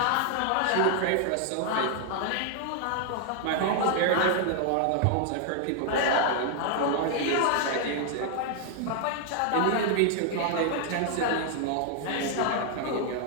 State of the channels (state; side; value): different; both; correlation 0.00